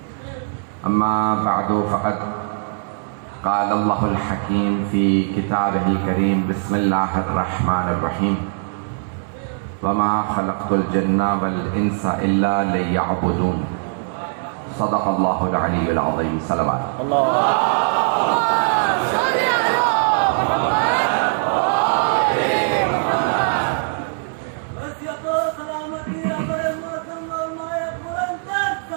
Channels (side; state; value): left; silent; 59 dB below the other